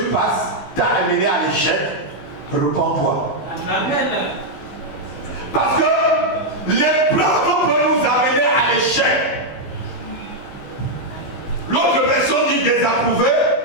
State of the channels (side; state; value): right; late; 15 ms